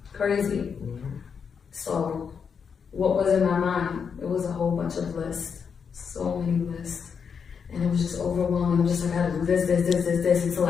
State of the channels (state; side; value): quieter; right; 6.5 dB